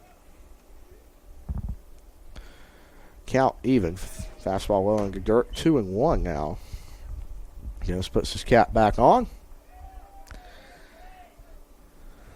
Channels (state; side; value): identical; both; correlation 1.00